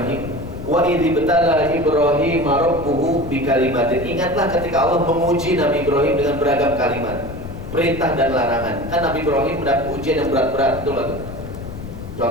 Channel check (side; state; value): left; noise; rumble, 11 dB below the sound